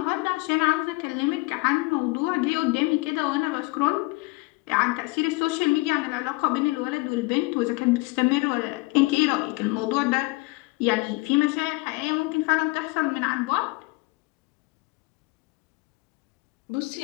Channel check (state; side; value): quieter; right; 24.4 dB